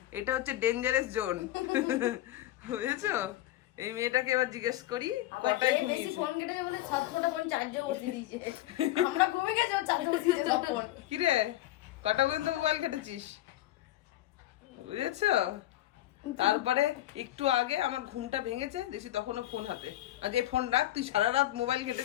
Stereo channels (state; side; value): quieter; right; 14.9 dB